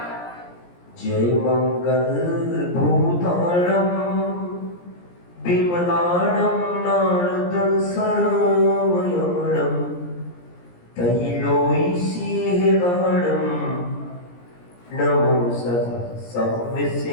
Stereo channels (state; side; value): late; right; 17 ms